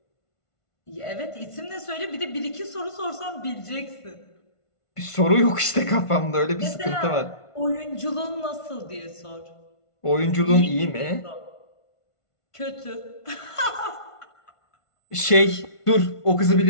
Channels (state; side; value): late; right; 1.5 ms